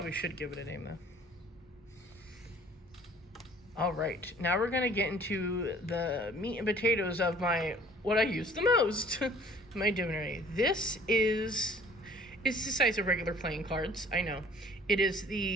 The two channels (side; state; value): both; normal; correlation 0.53